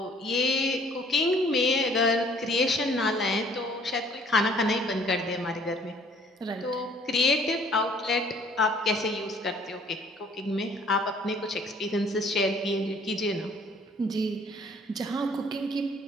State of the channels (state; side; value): normal; both; correlation 0.57